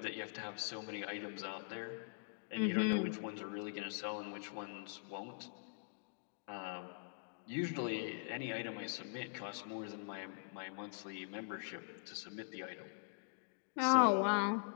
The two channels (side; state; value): right; silent; digital silence